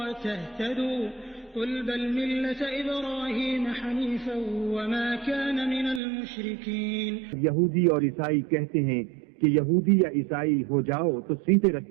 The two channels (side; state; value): left; drops out; at 6.0 s